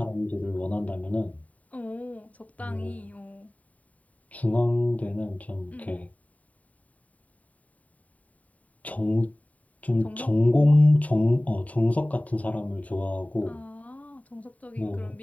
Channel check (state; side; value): late; right; 0.070 ms